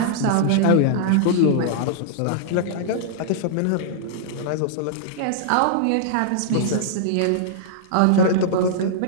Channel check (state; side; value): different; both; correlation -0.02